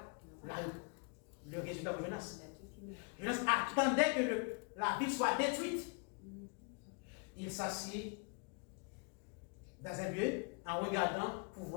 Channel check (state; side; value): quieter; right; 35.8 dB